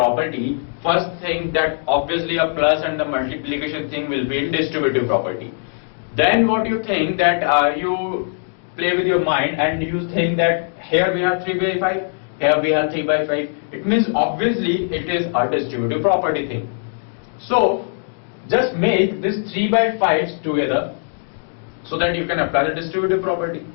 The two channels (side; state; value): right; silent; digital silence